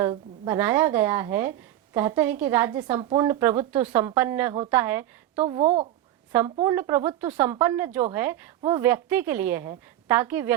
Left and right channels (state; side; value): quieter; left; 13.2 dB